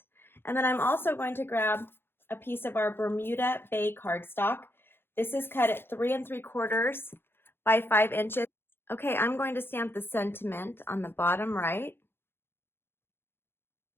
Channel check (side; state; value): right; late; 0.11 ms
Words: And then I'm also going to grab a piece of our Bermuda Bay cardstock. This is cut at 3 3/4 by 5 inches. Okay, I'm going to stamp the sentiment on the bottom right.